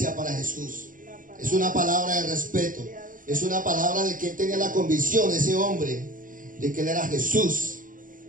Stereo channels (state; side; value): late; left; 0.39 ms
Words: para Jesús. Es una palabra de respeto. Es una palabra de que él tenía la convicción, ese hombre, de que él era Jesús.